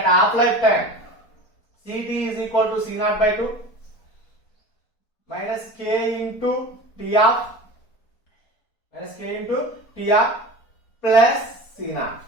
half-life time, Ct is equal to C0 by 2 minus K into T half plus C0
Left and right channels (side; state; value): right; late; 4.4 ms